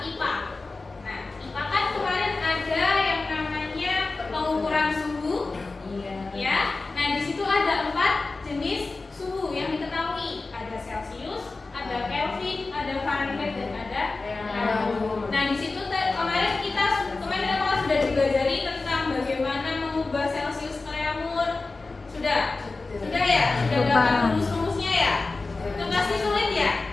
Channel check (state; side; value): quieter; right; 3.6 dB